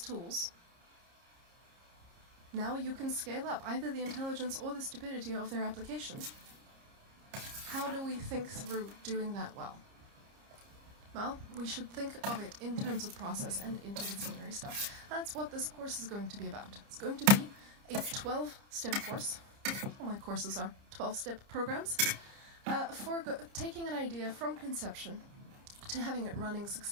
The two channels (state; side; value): late; left; 30 ms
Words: now you can scale up either the intelligence or the stupidity of their application. How do we think through doing that well? Well, we should think of it in terms of process and interdisciplinary stuff. That's what this course is going to be about. It's going to be a 12-step course. All my courses are 12-step programs. For taking an idea from conception to having it running